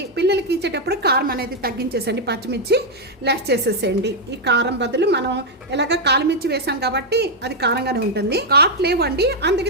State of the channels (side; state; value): both; normal; correlation 0.00